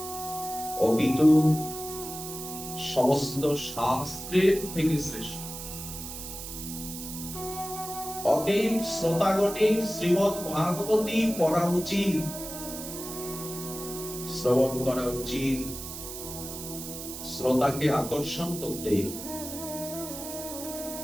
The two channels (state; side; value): noise; right; hiss, 9 dB below the sound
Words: অপিতু সমস্ত শাস্ত্রের থেকে শ্রেষ্ঠ। অতএব শ্রোতাগণের শ্রীমদ্ ভাগবতী পড়া উচিত, শ্রবণ করা উচিত, শ্রোতাকে আকর্ষণ করতে।